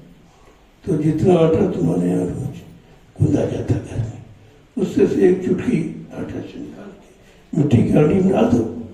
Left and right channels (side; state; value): both; identical; correlation 1.00